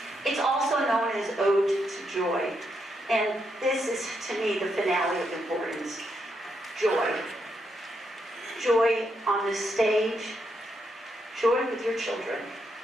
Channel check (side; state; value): both; normal; correlation 0.80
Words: It's also known as Ode to Joy. And this is, to me, the finale of importance. Joy. Joy on the stage. Joy with your children.